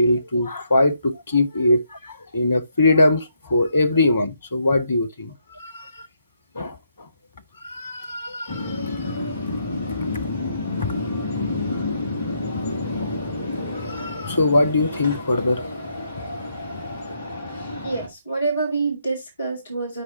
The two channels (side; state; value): both; inverted; correlation -0.76